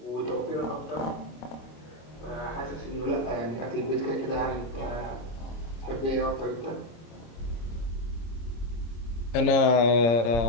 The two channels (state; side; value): late; right; 26 ms